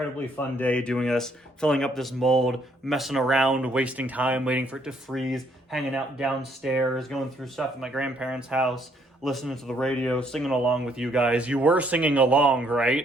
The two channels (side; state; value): both; normal; correlation 0.68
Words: fun day doing this, filling up this mold, messing around, wasting time, waiting for it to freeze, hanging out downstairs, going through stuff at my grandparents' house, listening to the radio, singing along with you guys. You were singing along,